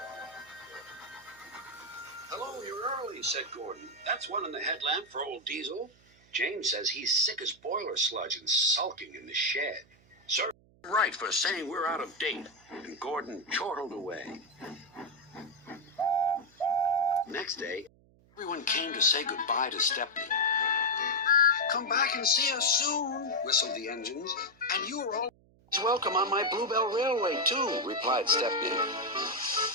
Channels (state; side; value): noise; right; hum, 30 dB below the sound